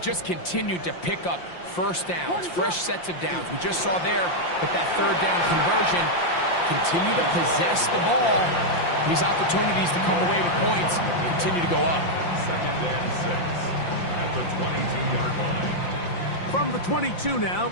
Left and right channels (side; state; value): right; late; 5.7 ms